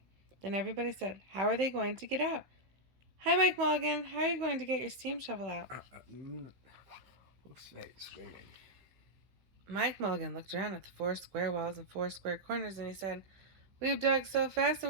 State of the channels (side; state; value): left; late; 16 ms